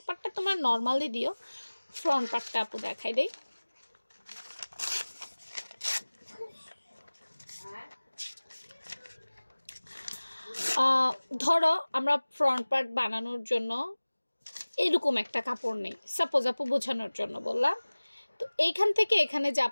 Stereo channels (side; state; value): both; inverted; correlation -1.00